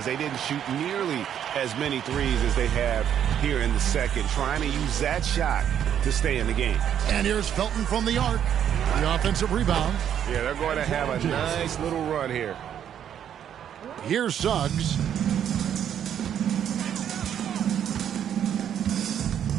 they didn't shoot nearly as many threes as they have here in the second, trying to use that shot to stay in the game. And here's Felton from the arc. The offensive rebound. Yeah, they're going to have a nice little run here. Here's Suggs.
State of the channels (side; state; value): left; quieter; 9.5 dB